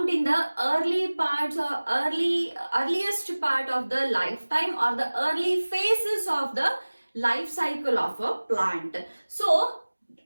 in the early parts or earliest part of the lifetime or the early phases of the life cycle of a plant. So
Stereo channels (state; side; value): inverted; both; correlation -1.00